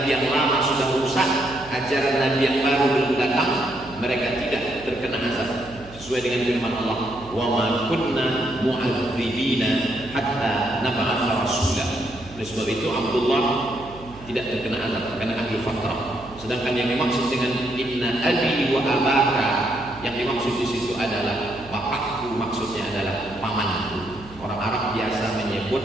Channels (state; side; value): noise; right; hum, 19 dB below the sound